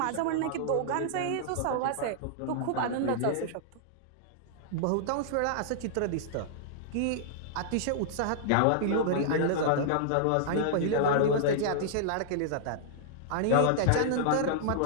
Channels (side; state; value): both; different; correlation -0.02